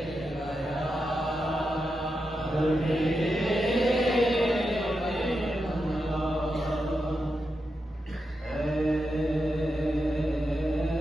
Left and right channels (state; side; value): normal; both; correlation 0.87